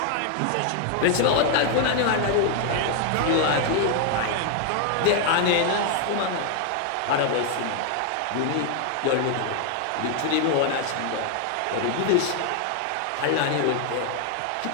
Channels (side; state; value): both; different; correlation 0.00